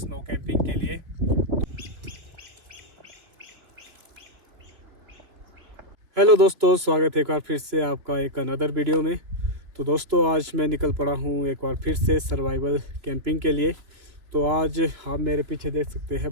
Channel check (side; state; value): left; late; 3.2 ms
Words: कैंपिंग के लिए। हेलो दोस्तों, स्वागत है एक बार फिर से आपका एक अनदर वीडियो में। तो दोस्तों आज मैं निकल पड़ा हूँ एक बार फिर से सर्वाइवल कैंपिंग के लिए। तो आज आप मेरे पीछे देख सकते